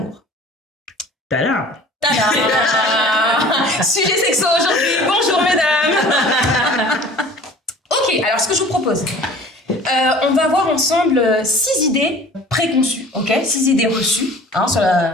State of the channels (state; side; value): normal; both; correlation 0.46